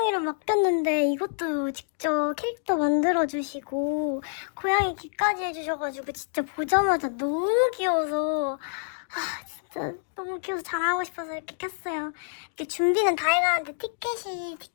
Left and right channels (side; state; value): right; silent; digital silence